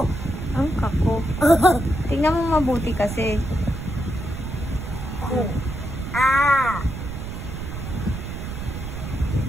Ang kako. Tingnan mo mabuti kasi. Ku. Ah.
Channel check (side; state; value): right; noise; rumble, 7 dB below the sound